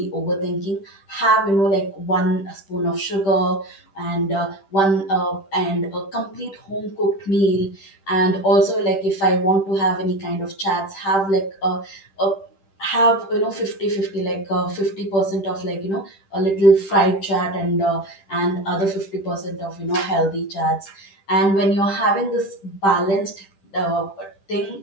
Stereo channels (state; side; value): late; right; 10 ms